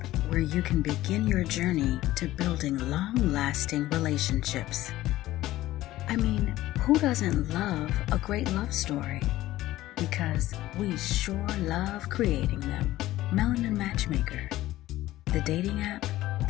where you can begin your journey to building long-lasting relationships. I mean, who doesn't love a great love story? Because we sure love creating them. Melanin Matchmaker, the dating app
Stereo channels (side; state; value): right; quieter; 15.7 dB